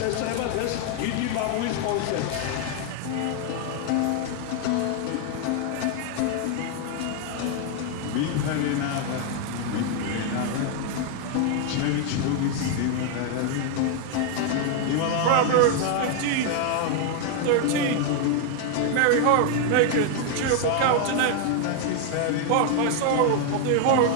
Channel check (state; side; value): different; both; correlation 0.00